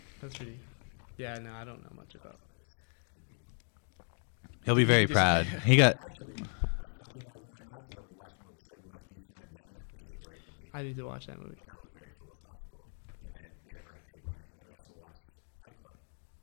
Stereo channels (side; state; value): right; silent; 54 dB below the other